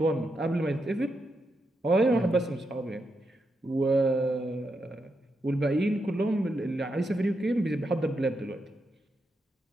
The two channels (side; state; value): both; normal; correlation 0.84